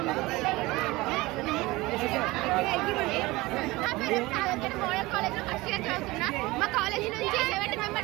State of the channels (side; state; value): left; quieter; 20.9 dB